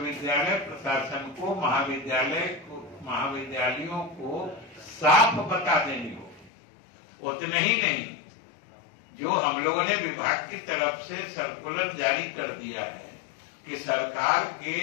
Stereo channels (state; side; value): drops out; right; at 6.5 s